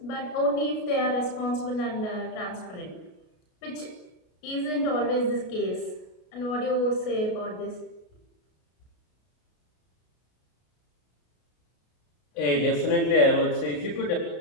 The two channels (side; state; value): right; late; 33 ms